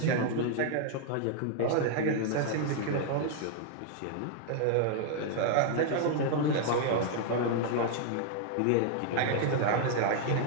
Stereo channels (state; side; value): different; both; correlation 0.00